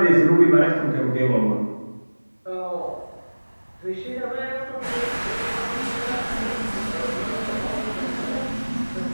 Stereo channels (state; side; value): inverted; both; correlation -1.00